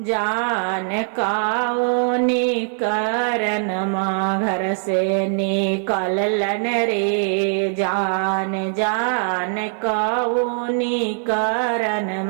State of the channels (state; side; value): silent; left; digital silence